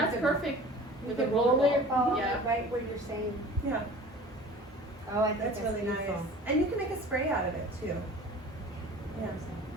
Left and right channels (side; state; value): both; normal; correlation 0.42